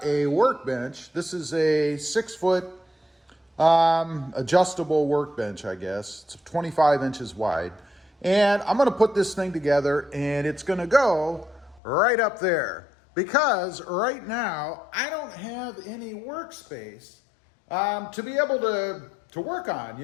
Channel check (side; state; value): right; drops out; at 11.8 s